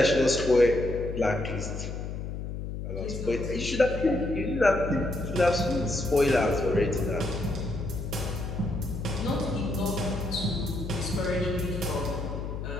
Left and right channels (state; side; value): noise; left; hum, 6 dB below the sound